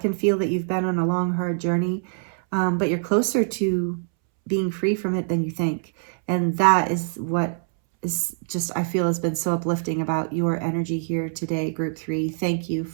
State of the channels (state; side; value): silent; left; 63 dB below the other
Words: feel that you've been on a long, hard journey, but you're closer to being free from it than you think. And that is what is just, I feel, has been so uplifting about your energy here today, group 3. Thank you